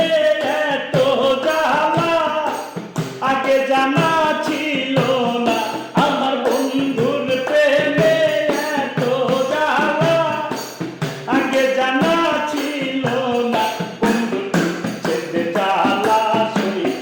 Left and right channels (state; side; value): identical; both; correlation 1.00